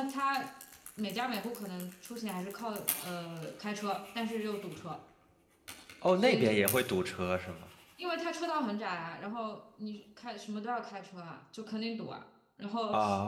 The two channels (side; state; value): both; identical; correlation 1.00